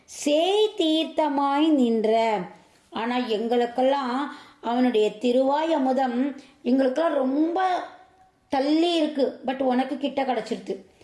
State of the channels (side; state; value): both; identical; correlation 1.00